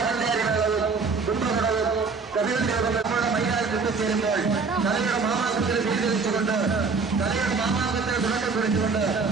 പഞ്ചാരി മേളവും കുംഭകുടവും കഥകളി രൂപങ്ങൾ നമ്മുടെ മൈതാനത്ത് എത്തിച്ചേരുമ്പോൾ കലയുടെ മാമാങ്കത്തിന് സ്വീകരിച്ചുകൊണ്ട് കലയുടെ മാമാങ്കത്തിന് തുടക്കം കുറിച്ചുകൊണ്ട്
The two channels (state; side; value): quieter; left; 4.7 dB